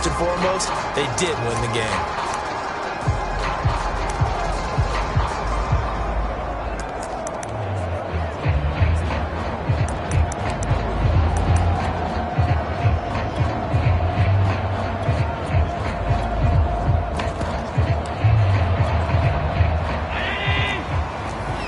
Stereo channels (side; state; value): both; identical; correlation 1.00